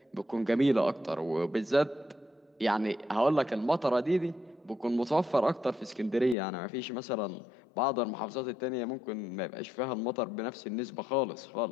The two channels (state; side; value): drops out; right; at 6.4 s